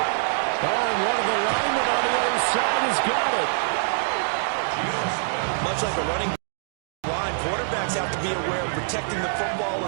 Oh, and one of the linemen on the other side has got it. Gino Smith. Much like a running line, quarterbacks have to be aware of protecting the football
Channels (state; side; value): silent; left; digital silence